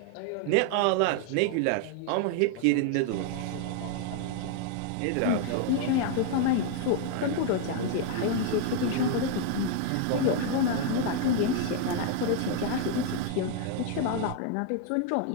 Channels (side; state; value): both; different; correlation 0.00